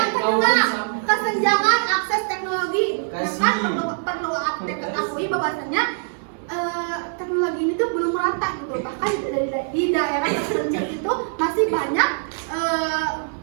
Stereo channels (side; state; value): left; silent; 64 dB below the other